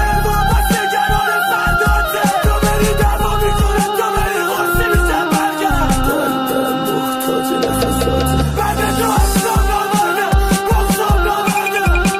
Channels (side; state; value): both; identical; correlation 1.00